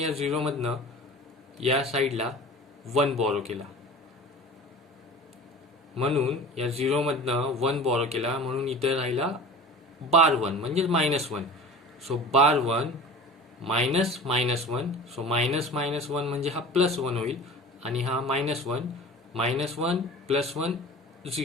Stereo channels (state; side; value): normal; both; correlation 0.38